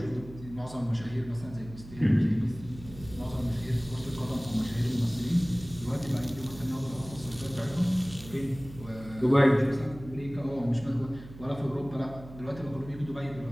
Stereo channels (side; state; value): right; noise; hum, 16 dB below the sound